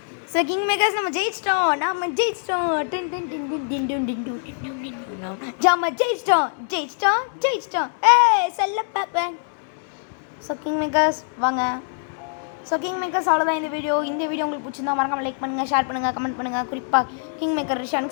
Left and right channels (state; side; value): silent; right; 63 dB below the other